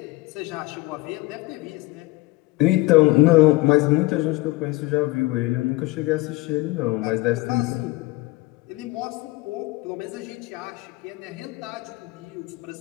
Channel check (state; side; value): quieter; right; 21.2 dB